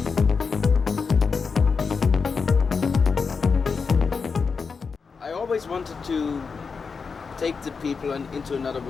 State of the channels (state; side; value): quieter; right; 5.2 dB